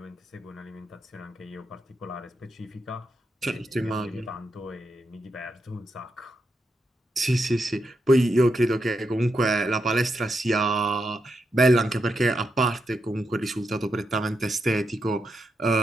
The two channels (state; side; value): normal; both; correlation 0.84